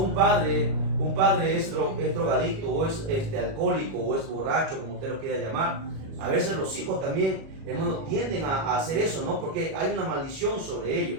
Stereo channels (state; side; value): late; left; 37 ms